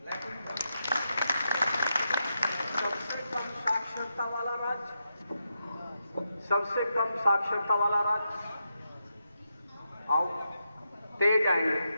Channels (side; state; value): both; inverted; correlation -0.85